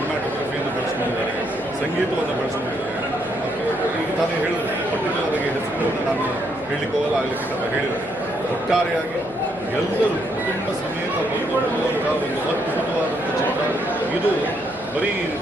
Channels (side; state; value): left; noise; hum, 19 dB below the sound